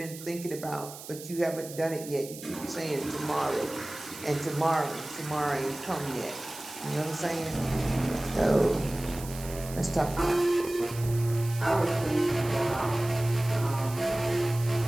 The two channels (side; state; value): right; noise; hiss, 14 dB below the sound